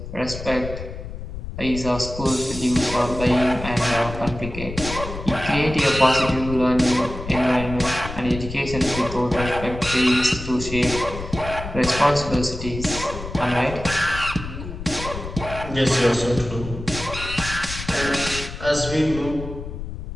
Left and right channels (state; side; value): noise; left; rumble, 9 dB below the sound